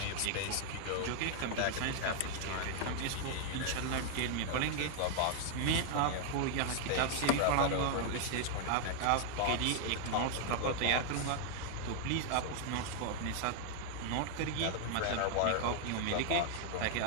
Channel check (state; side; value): different; both; correlation 0.00